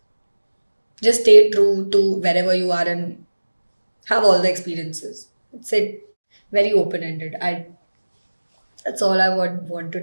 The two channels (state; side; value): inverted; both; correlation -1.00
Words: stay true to wherever you are and have all the experiences. It's it very open ended. I That's all I would want to